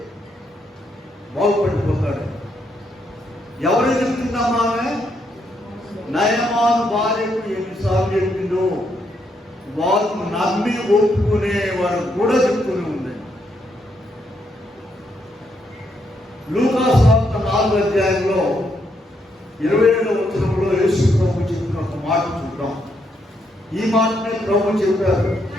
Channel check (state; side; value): normal; both; correlation 0.77